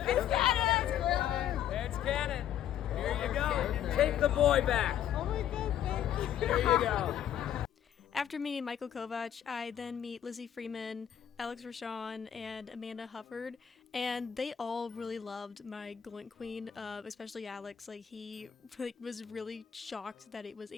It's canon! It's canon. Here you go. Take the boy back. Oh my god, thank you. Here you go. After meeting Michael Kovac, I then meet Lizzie Freeman, Alex Rashawn, and Amanda Hufford, and they all really loved my Gloink Queen, especially Alex. Like he was really shocked that it was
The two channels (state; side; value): quieter; right; 10.1 dB